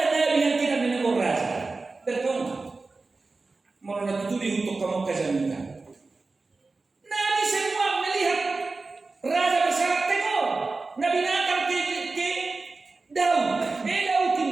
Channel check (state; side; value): quieter; left; 3.7 dB